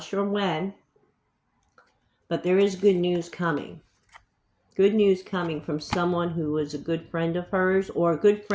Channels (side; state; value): both; identical; correlation 1.00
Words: sure when, but there is good news coming. Good news coming from someone who was a good friend of hers or a good